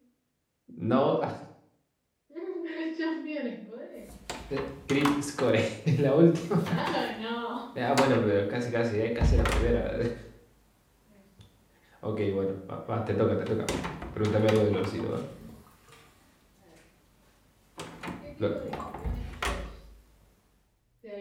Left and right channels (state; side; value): identical; both; correlation 1.00